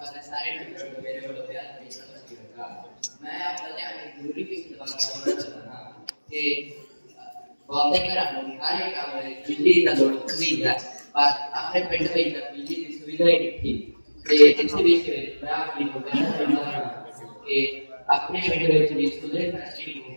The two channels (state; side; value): inverted; both; correlation -1.00